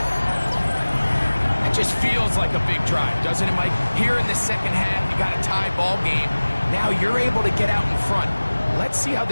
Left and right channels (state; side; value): inverted; both; correlation -1.00